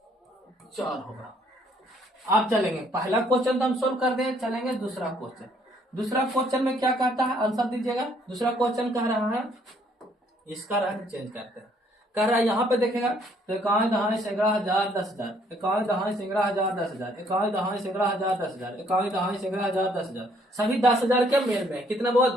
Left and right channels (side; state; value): both; normal; correlation 0.65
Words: 4 होगा। आप चलेंगे पहला क्वेश्चन तो हम सोल्व कर दें, चलेंगे दूसरा क्वेश्चन। दूसरा क्वेश्चन में क्या कहता है? आंसर दीजिएगा। दूसरा क्वेश्चन कह रहा है, इसका रंग चेंज करते हैं। कह रहा है यहाँ पे देखेगा तो 1 दहाई सैकड़ा हजार 10,000, 1 दहाई सैकड़ा हजार 10,000, 1 दहाई सैकड़ा हजार 10,000, 1 दहाई सैकड़ा हजार 10,000, सभी 10,000 के मेल में है। कितना बहुत?